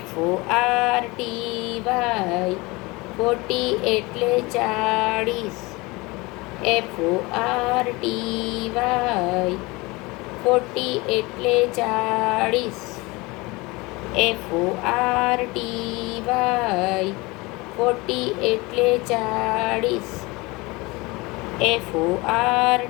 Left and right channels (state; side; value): quieter; right; 23.8 dB